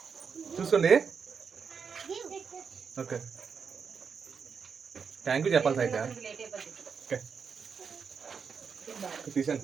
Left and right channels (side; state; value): left; quieter; 6.1 dB